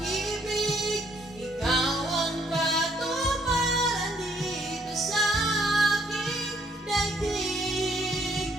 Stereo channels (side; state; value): both; normal; correlation 0.68